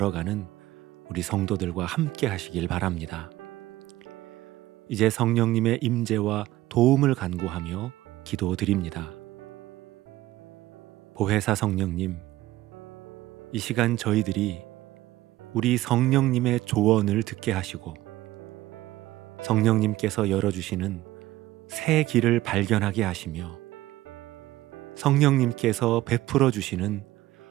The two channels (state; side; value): quieter; left; 16.4 dB